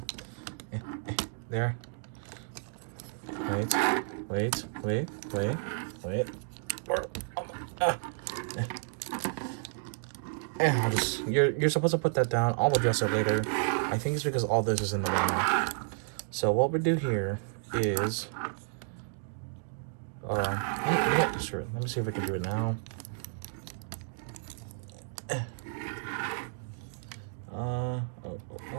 There. Wait. I'll just, you're supposed to put that down. I'll address it later. I think it's because all this is in the way now. So what we do here is, sure. Let me see if I can do it now.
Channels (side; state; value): left; silent; digital silence